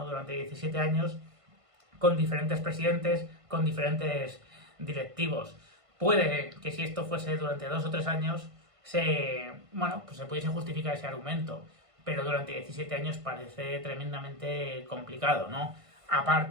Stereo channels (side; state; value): left; late; 1.5 ms